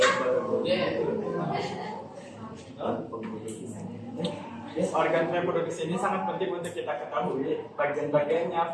Organ reproduksi ini sangat penting untuk kita ketahui bagian-bagiannya,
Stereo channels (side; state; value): both; identical; correlation 1.00